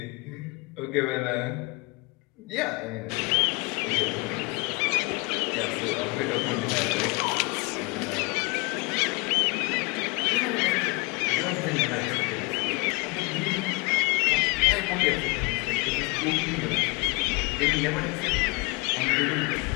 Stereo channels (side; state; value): right; quieter; 27.6 dB